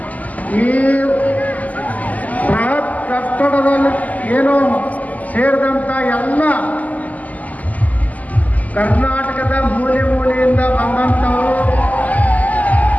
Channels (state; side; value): late; right; 0.077 ms